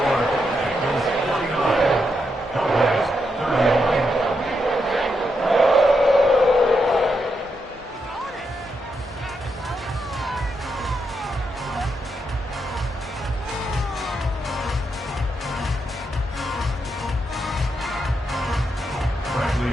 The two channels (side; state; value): both; normal; correlation 0.82